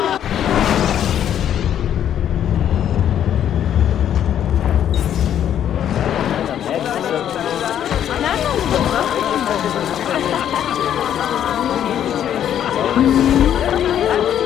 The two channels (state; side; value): quieter; right; 10.1 dB